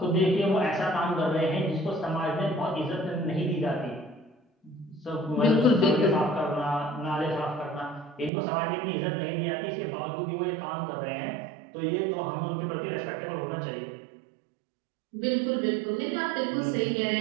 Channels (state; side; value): drops out; left; at 8.3 s